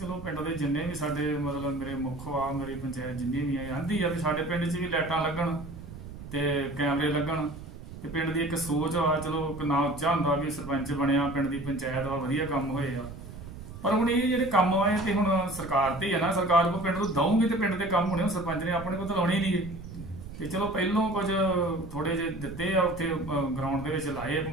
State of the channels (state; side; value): noise; right; rumble, 12 dB below the sound